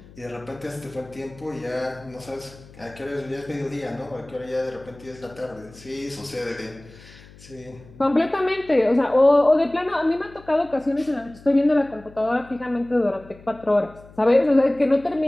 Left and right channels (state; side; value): noise; left; hum, 22 dB below the sound